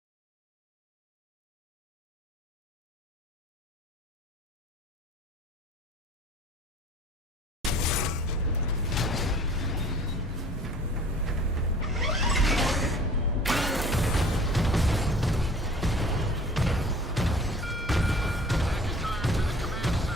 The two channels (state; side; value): normal; both; correlation 0.47